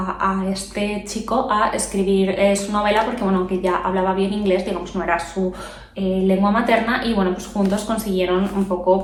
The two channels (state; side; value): identical; both; correlation 1.00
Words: este chico a escribir su novela porque, bueno, que ya hablaba bien inglés, digamos, no era su lengua materna, y bueno, pues juntos consiguieron un poco